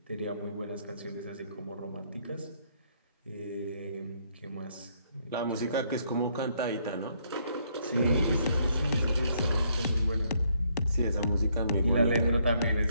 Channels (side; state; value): both; inverted; correlation -0.70